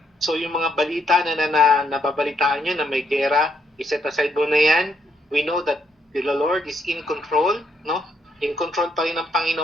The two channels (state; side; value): normal; both; correlation 0.74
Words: So, yung mga balita na nababalitaan nyo na may gera, iset aside mo na yan. We know that the Lord is in control, no? In control pa rin ng